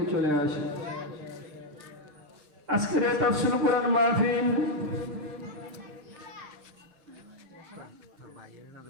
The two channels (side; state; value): left; late; 6.7 ms